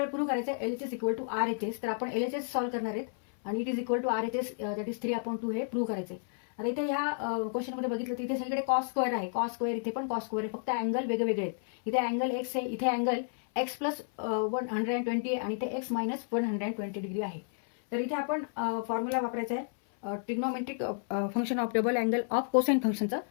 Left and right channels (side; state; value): right; silent; 57 dB below the other